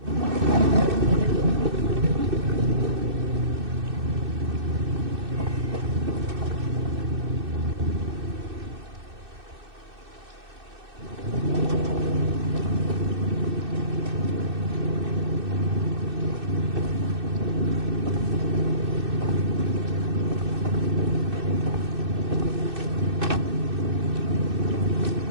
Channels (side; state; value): left; late; 2.6 ms